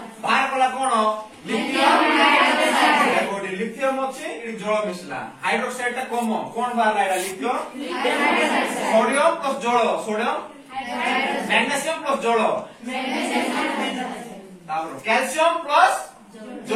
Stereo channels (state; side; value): identical; both; correlation 1.00